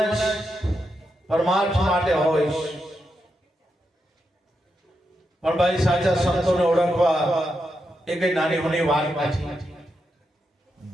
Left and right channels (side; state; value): both; normal; correlation 0.85